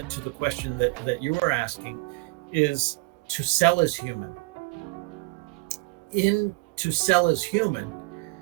to the question that you were asking, is To Sell is Human. In To Sell is Human,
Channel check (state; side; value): quieter; left; 26.4 dB